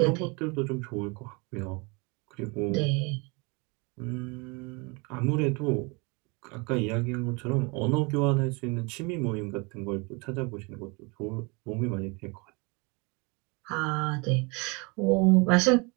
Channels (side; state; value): left; quieter; 29.3 dB